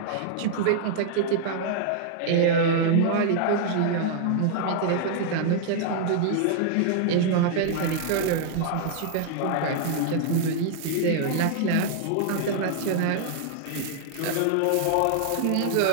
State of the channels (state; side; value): different; both; correlation -0.01